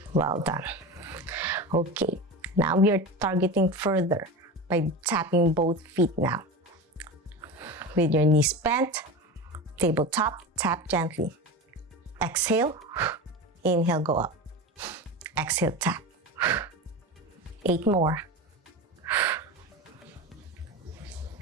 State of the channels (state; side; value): normal; both; correlation 0.26